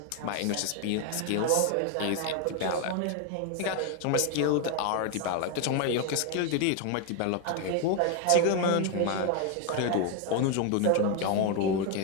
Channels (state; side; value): different; both; correlation 0.01